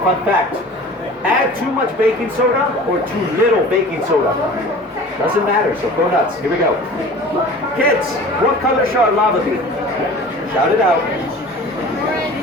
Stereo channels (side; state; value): both; normal; correlation 0.42